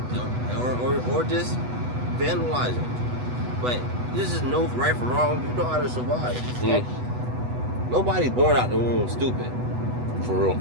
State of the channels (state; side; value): late; left; 8.1 ms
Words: or just vandalizing. But this is no right from wrong. You know how to survive. Mm. Nobody's born out the womb stupid. For real.